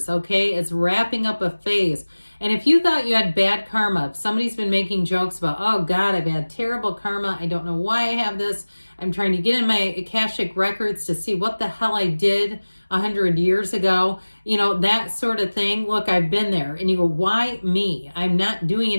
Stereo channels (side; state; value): both; inverted; correlation -1.00